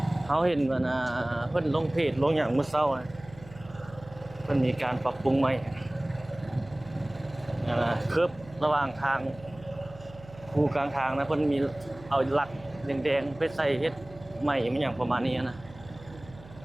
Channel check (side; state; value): right; noise; hum, 19 dB below the sound